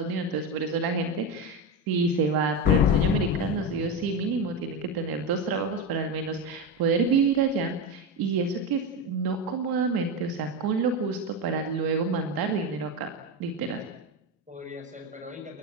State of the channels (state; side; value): normal; both; correlation 0.16